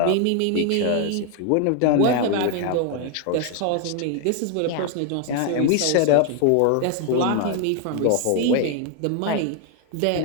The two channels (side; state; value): both; different; correlation 0.01